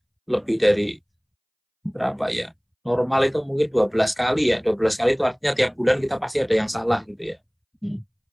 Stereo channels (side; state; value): both; identical; correlation 1.00